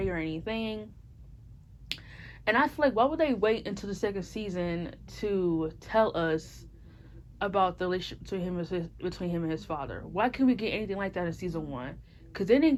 or anything. And I feel like, why would they wait until the second season to tell us about the relationship between him and his father? Why couldn't we get anything like that in season one? Because then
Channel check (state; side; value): identical; both; correlation 1.00